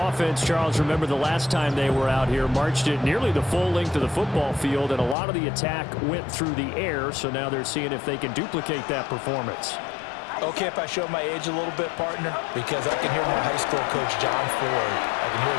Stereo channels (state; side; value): drops out; right; at 5.2 s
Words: Charles, remember the last time they were out here, marched it nearly the full length of the football field, and a lot of the attack went through the air, so now they're seeing if they can duplicate that performance. Okay, if I show my age a little bit, partner, because I can hear my high school coach, John Ford. I can hear